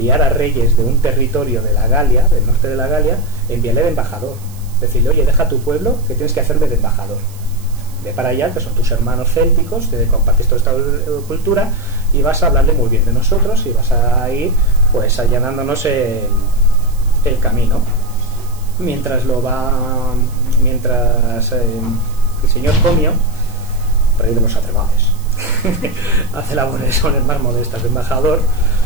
a reyes de un territorio de la Galia, del norte de la Galia, enviarle de embajador. Decirle, oye, deja tu pueblo, que tienes que hacerme de embajador. Ve para allá, que son tus hermanos célticos, te compartes toda esta cultura y vas a hablarle muy bien de nosotros y vas a ir pues allanándonos el camino. Mientras el señor Comio, rey de los Atrevales, hace labores más modestas de embajador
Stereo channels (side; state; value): right; noise; hiss, 23 dB below the sound